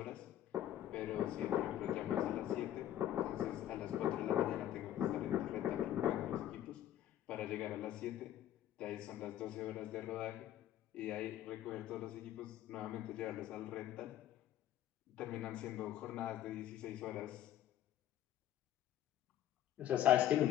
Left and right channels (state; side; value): quieter; right; 12.1 dB